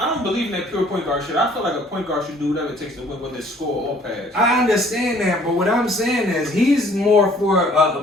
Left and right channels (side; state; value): both; normal; correlation 0.57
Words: believe in that pure point guard shit. I feel like a point guard should do whatever it takes to win, whether it's score or pass. I understand that, but what I'm saying is he's more for